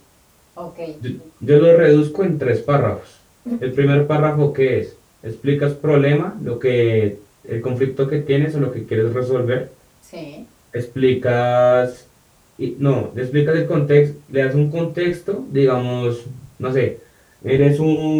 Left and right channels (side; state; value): both; identical; correlation 1.00